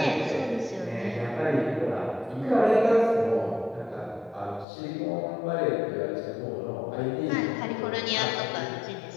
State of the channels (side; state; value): right; drops out; at 4.7 s